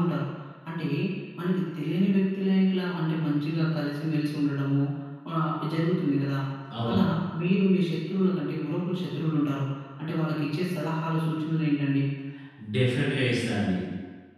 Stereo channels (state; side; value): identical; both; correlation 1.00